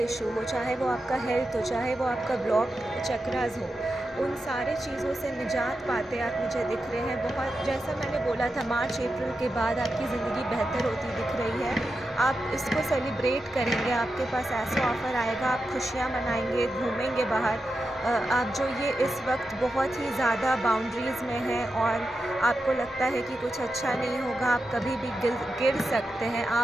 इशू हो, चाहे वो आपका हेल्थ हो, चाहे वो आपका ब्लॉक चक्रास हो, उन सारे चीज़ों से निजात पाते आप मुझे दिख रहे हैं। बहुत, जैसा मैंने बोला था, मार्च अप्रैल के बाद आपकी ज़िंदगी बेहतर होती दिख रही है। आप इसको सेलिब्रेट करेंगे, आपके पास ऐसा ऑफ़र आएगा, आप खुशियाँ मनाएंगे, घूमेंगे बाहर। आप जो ये इस वक्त बहुत ही ज़्यादा बाउंड्रीज़ में हैं और आपको लगता है कि कुछ अच्छा नहीं होगा, आप कभी भी गिर सकते हैं,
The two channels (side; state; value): both; normal; correlation 0.89